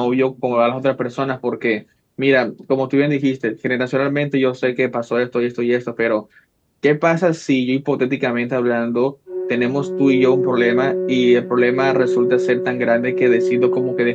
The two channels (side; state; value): both; identical; correlation 1.00